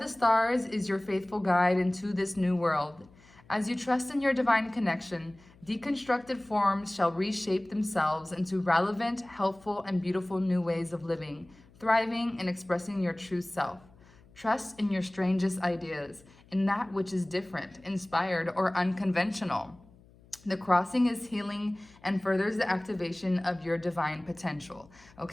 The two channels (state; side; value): noise; left; hum, 26 dB below the sound